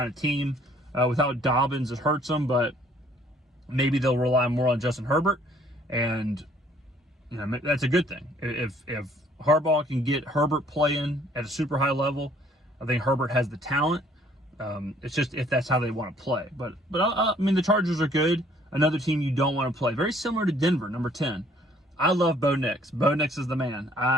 of team. Without Dobbins, it hurts them, but maybe they'll rely more on Justin Herbert, and that's a good thing. If Harbaugh can get Herbert playing at a super high level, I think Herbert has the talent. It's just if that's how they want to play. But the Chargers are good. Another team you don't want to play. Very similar to Denver, number 10. I love Bo Nix. Bo Nix is the man.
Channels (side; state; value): both; normal; correlation 0.61